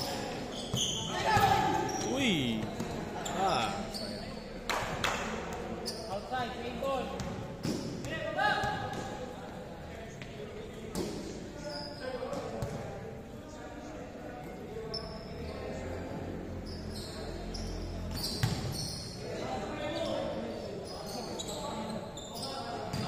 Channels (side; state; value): both; identical; correlation 1.00